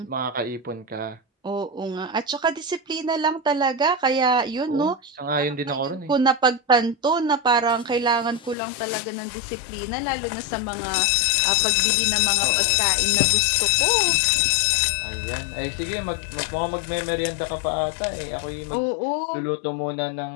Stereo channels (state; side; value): drops out; right; at 8.6 s